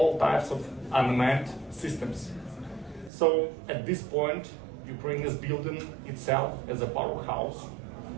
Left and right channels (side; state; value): left; drops out; at 3.1 s